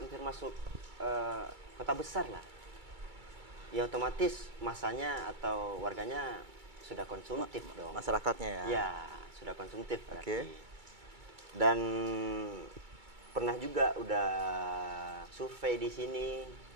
masuk kota besar lah. Ya otomatis masanya atau warganya sudah konsumtif dong. Masyarakatnya ya. Ya, sudah konsumtif berarti. Dan pernah juga udah survei di sini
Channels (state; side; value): late; left; 2.3 ms